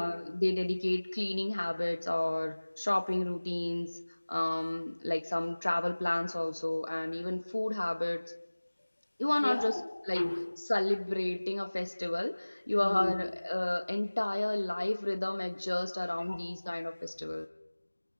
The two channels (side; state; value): both; inverted; correlation -1.00